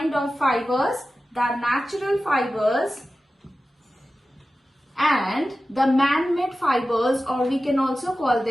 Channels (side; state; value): both; normal; correlation 0.94